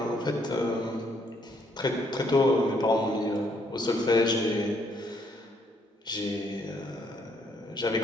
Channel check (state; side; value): normal; both; correlation 0.70